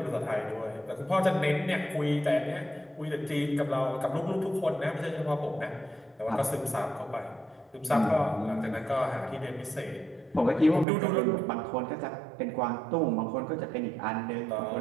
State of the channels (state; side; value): drops out; left; at 10.9 s